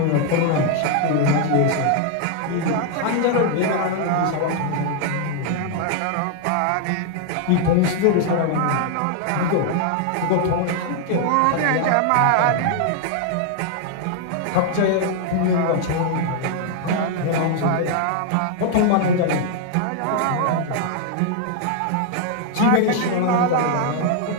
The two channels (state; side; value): different; both; correlation 0.00